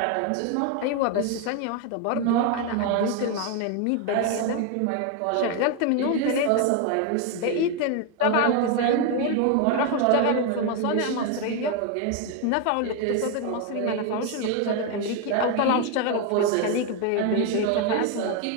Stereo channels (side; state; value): both; different; correlation 0.01